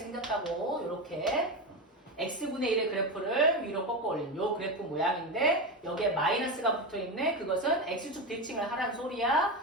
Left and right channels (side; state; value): both; normal; correlation 0.17